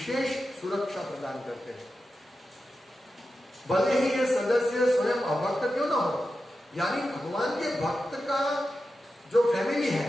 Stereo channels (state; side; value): normal; both; correlation 0.91